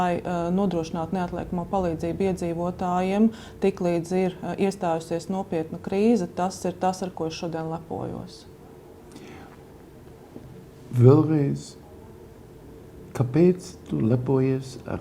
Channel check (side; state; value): both; identical; correlation 1.00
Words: nodrošinātu neatliekamo palīdzību iedzīvotājiem, tiklīdz ir iestājusies nopietna krīze, tas ir tas, ar ko es šodien lepojos. Vēlreiz, kāpēc tu lepojies